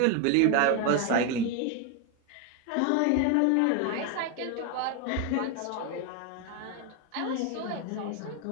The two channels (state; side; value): different; both; correlation 0.01